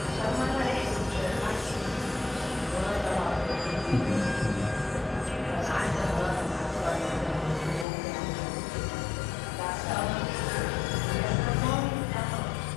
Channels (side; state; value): right; drops out; at 7.9 s